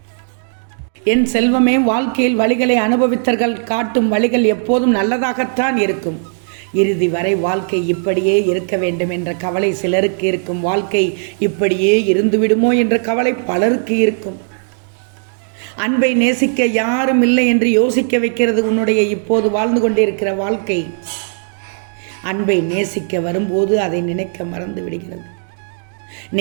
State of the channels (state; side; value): silent; left; digital silence